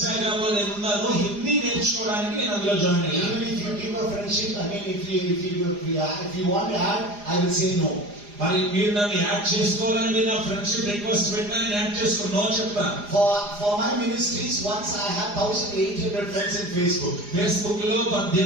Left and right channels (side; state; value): left; late; 4.9 ms